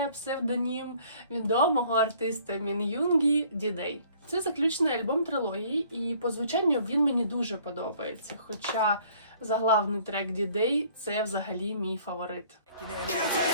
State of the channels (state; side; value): inverted; both; correlation -0.57